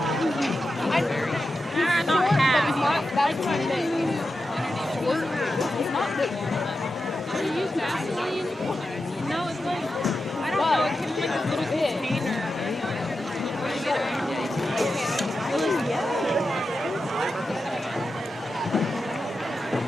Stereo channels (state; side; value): normal; both; correlation 0.90